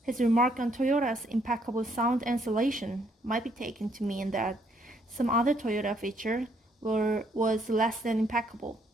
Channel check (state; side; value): normal; both; correlation 0.69